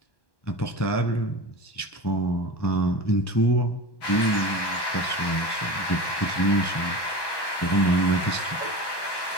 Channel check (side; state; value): right; late; 1.1 ms